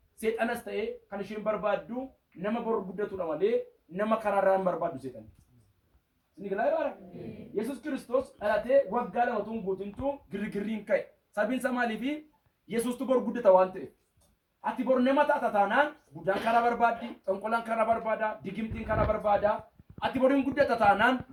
seexanas ta'e kan isheen barbaaddu nama boru guddatudha malee nama karaarraan barbaaddu seexan. Isin galaa Yesuus Kiristoos dhalatee waggaa lama tun guutintu girgirriin ka'e. Sabiinsa maaliifi Yesuustu boru guddata waan ta'eef. Ati boru nama taata taanaan guddaan karaa barbaaddi, xonqolaan karaa barbaada, digimtiin karaa barbaada. Ati boruun guddata taanaan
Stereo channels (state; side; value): identical; both; correlation 1.00